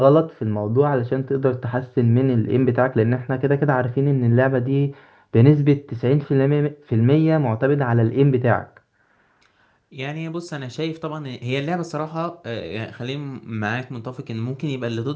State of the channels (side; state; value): both; identical; correlation 1.00